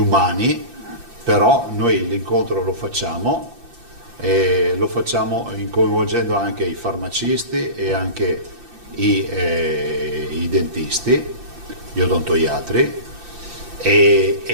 però noi l'incontro lo facciamo coinvolgendo anche i farmacisti e anche i dentisti, gli odontoiatri, e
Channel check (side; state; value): left; late; 5.8 ms